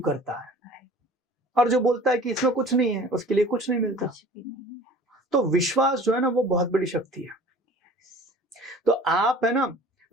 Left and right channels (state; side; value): normal; both; correlation 0.45